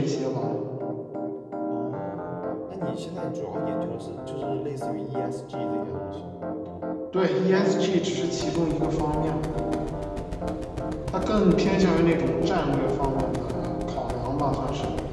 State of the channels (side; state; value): both; identical; correlation 1.00